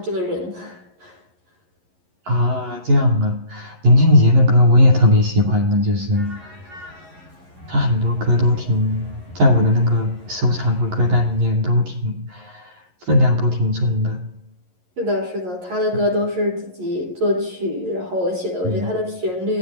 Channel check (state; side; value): late; left; 11 ms